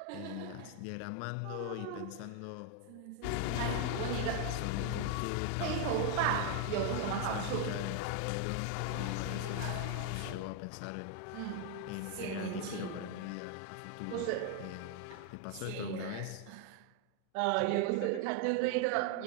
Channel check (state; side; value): different; both; correlation 0.01